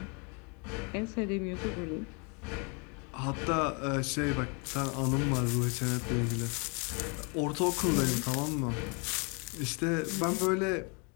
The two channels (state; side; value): quieter; right; 33.7 dB